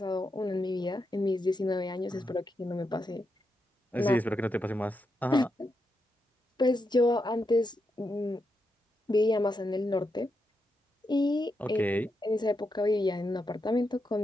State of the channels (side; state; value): both; normal; correlation 0.84